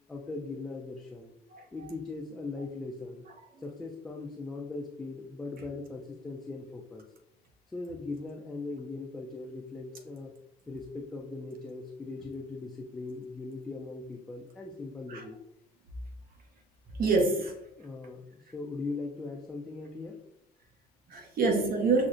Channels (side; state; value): both; normal; correlation 0.49